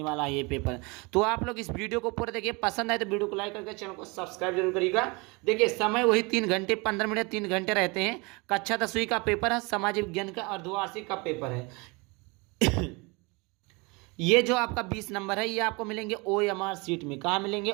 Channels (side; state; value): left; quieter; 27.6 dB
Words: वाला है ये पेपर। तो आप लोग इस वीडियो को पूरा देखिए, पसंद आए तो वीडियो को लाइक करके चैनल को सब्सक्राइब जरूर करिएगा। देखिए समय वही 3 घंटे 15 मिनट 3 घंटे रहते हैं। कक्षा 10वीं का पेपर है, समाज विज्ञान का अर्धवार्षिक का पेपर है। ये जो आपका 20 नंबर है ये आपको मिलेंगे OMR सीट में। कहाँ मिलेंगे?